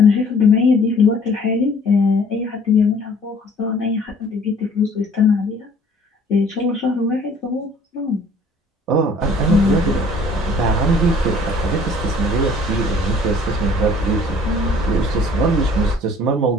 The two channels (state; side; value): normal; both; correlation 0.54